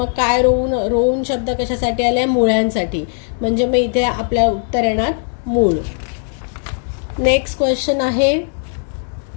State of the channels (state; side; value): silent; right; digital silence